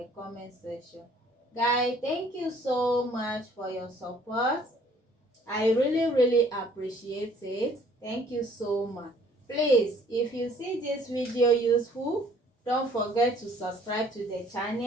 comment section. Guys, thank you so much for your support. I really appreciate it. Thank you so much. Please, if you see this video useful, don't forget to subscribe to the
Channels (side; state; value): both; normal; correlation 0.59